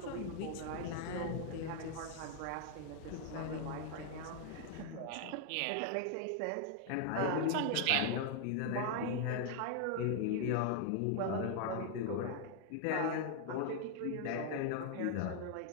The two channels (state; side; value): different; both; correlation 0.00